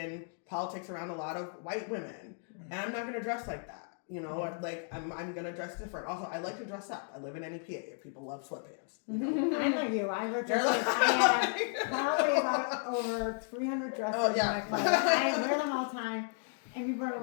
politics around a lot of white women, and I'm not going to dress like that. I'm gonna dress different. Also, I like to dress up. I live in NEPA. People love sweatpants. I know you. I have probably about over 300 dresses in my closet. I wear them all the time. And people are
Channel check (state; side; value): silent; right; 55 dB below the other